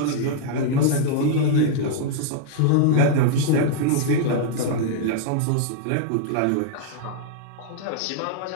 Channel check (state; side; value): different; both; correlation -0.01